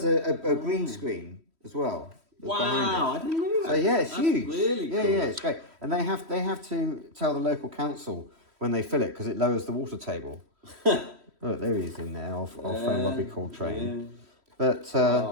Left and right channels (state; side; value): late; left; 3.1 ms